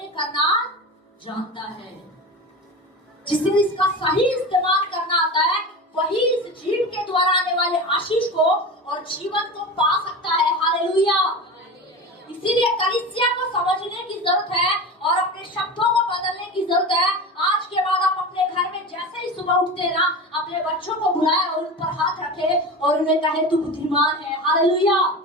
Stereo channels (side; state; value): both; normal; correlation 0.28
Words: करना जानता है। जिसे इसका सही इस्तेमाल करना आता है, वही इस जीव के द्वारा आने वाले आशीष को और जीवन को पा सकता है। हालेलुया। इसीलिए कलीसिया को समझने की जरूरत है और अपने शब्दों को बदलने की जरूरत है। आज के बाद आप अपने घर में जैसे ही सुबह उठते हैं ना, अपने बच्चों को बुलाए और उन पर हाथ रखे और उन्हें कहे तू बुद्धिमान है। हालेलुया।